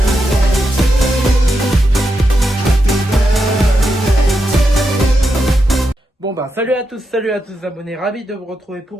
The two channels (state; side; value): normal; both; correlation 0.85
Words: Bon bah salut à tous abonnés, ravi de vous retrouver